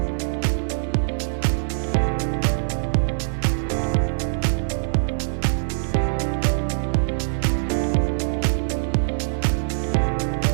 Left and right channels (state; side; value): silent; left; digital silence